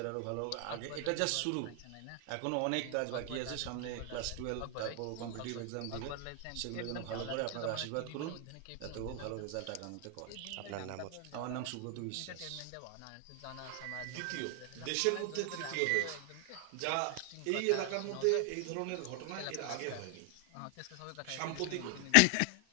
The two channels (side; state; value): both; different; correlation 0.00